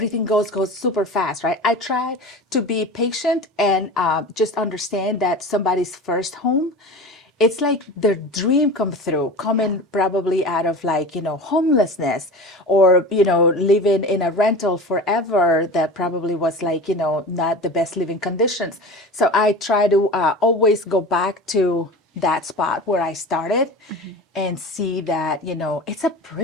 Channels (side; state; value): both; normal; correlation 0.33